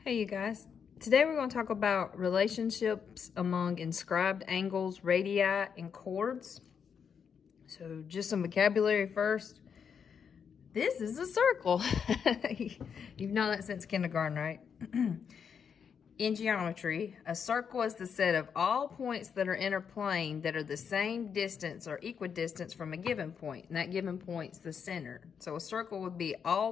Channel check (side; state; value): right; quieter; 6.9 dB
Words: Hey you guys, today we're going to talk about relationships among inscribed angles, radii, and chords. So just some vocabulary first. This is a circle. You've known that since kindergarten, right? In geometry, a circle is the set of all points that are in a plane that are the same distance or equidistant from a given point, and that given point's the center. So a circle would be